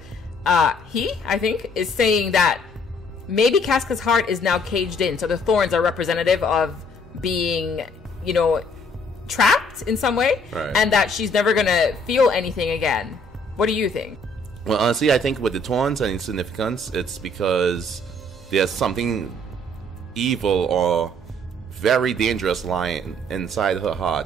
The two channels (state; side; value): normal; both; correlation 0.62